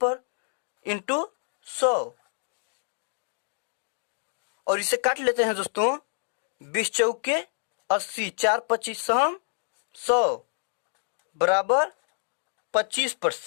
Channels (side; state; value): right; silent; digital silence